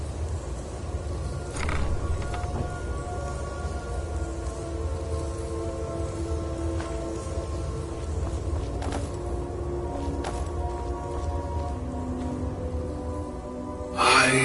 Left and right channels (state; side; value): identical; both; correlation 1.00